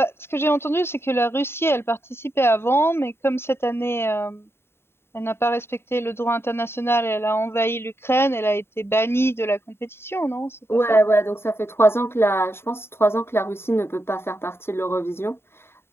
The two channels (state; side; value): late; right; 0.11 ms